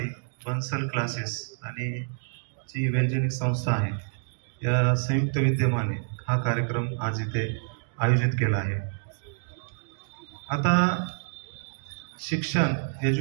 बन्सल क्लासेस आणि जी वैज्ञानिक संस्था आहे या संयुक्त विद्यमाने हा कार्यक्रम आज इथे आयोजित केला आहे। आता शिक्षण,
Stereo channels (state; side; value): silent; left; digital silence